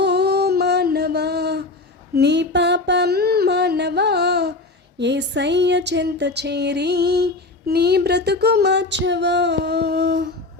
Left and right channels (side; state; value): right; quieter; 3.2 dB